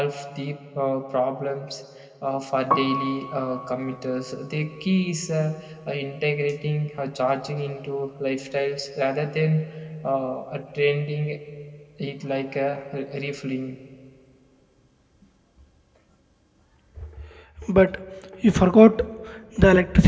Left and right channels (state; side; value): identical; both; correlation 1.00